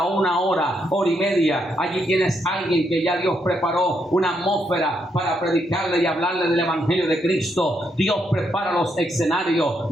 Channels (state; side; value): normal; both; correlation 0.77